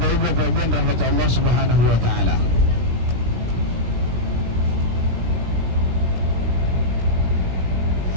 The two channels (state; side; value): late; left; 17 ms